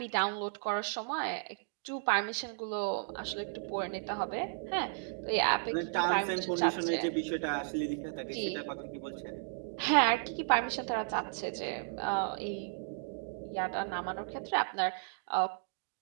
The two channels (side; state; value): left; silent; digital silence